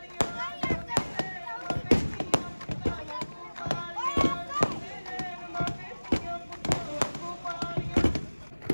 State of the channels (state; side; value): inverted; both; correlation -1.00